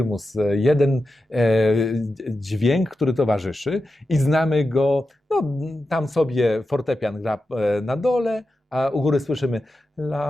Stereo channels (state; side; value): normal; both; correlation 0.90